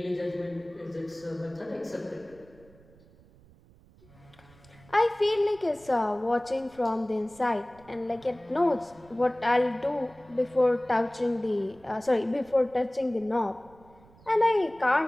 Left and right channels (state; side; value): noise; right; rumble, 26 dB below the sound